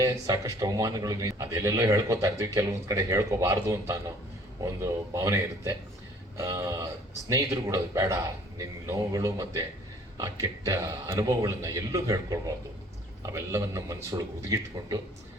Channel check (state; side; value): normal; both; correlation 0.55